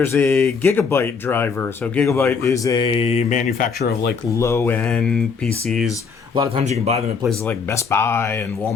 a Gigabyte driver. So Gigabyte is a manufacturer of like low end PCs. A lot of times you can buy them at places like Best Buy and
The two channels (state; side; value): quieter; right; 5.5 dB